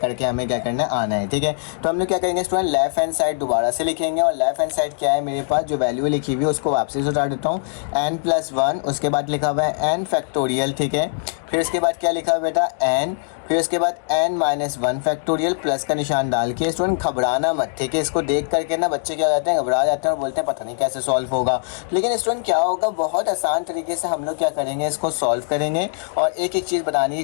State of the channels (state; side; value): silent; right; digital silence